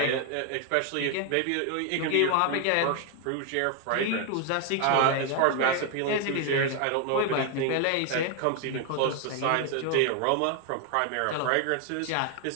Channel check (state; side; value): different; both; correlation 0.01